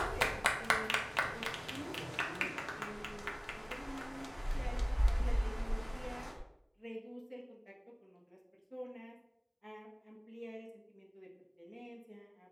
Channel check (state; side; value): identical; both; correlation 1.00